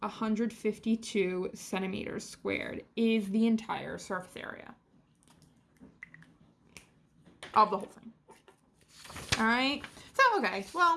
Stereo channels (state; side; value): identical; both; correlation 1.00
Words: 152 centimeters squared, is the entire surface area of the whole thing. All right. So, okay,